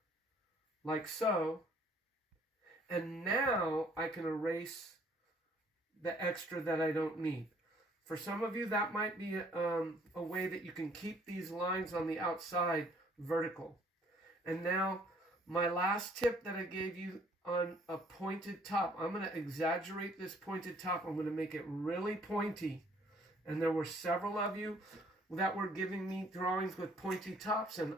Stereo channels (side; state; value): both; normal; correlation 0.61